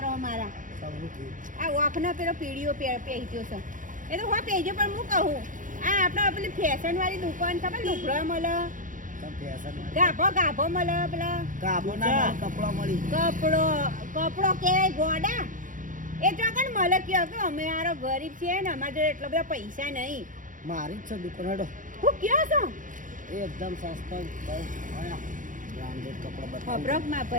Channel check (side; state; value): left; late; 0.38 ms